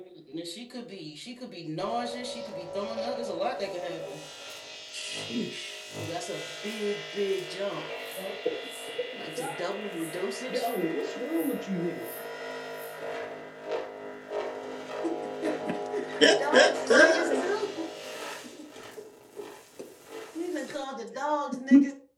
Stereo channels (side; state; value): both; identical; correlation 1.00